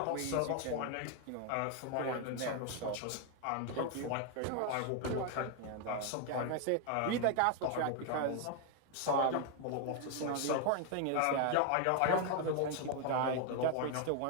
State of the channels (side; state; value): both; different; correlation 0.01